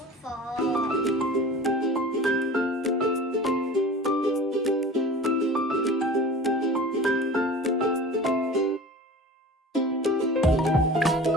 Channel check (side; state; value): both; normal; correlation 0.38